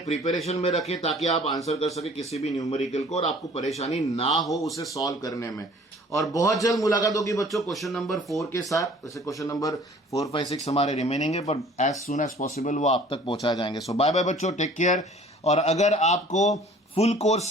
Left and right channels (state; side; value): normal; both; correlation 0.51